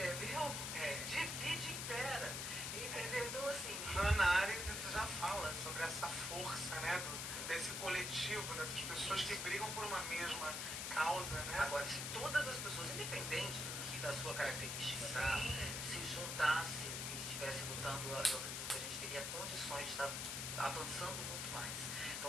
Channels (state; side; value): noise; left; hiss, 2 dB below the sound